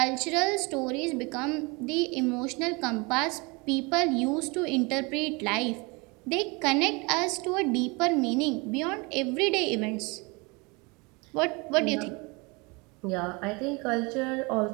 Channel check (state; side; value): quieter; left; 27.9 dB